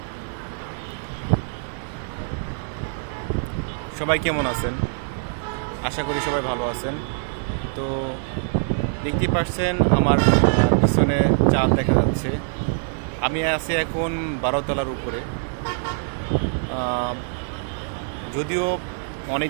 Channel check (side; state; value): left; silent; 63 dB below the other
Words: সবাই কেমন আছেন? আশা করি সবাই ভালো আছেন। তো দেখতেই পাচ্ছেন আমার পিছনে চাঁদ দেখা যাচ্ছে। আমি আছি এখন 12 তলার উপরে। যদিও অনেক